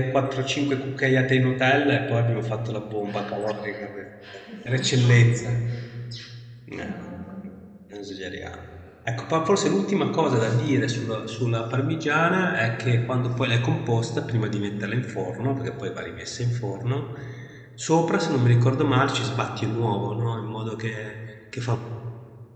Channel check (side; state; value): both; identical; correlation 1.00